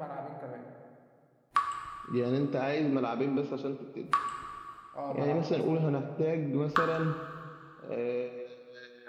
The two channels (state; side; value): identical; both; correlation 1.00